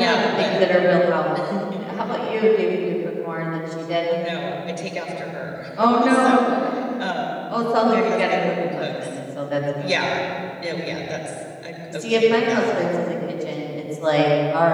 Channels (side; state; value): both; identical; correlation 1.00